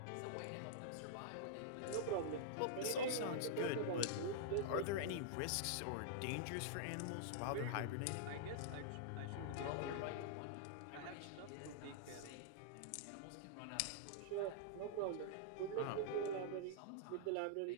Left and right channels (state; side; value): different; both; correlation -0.02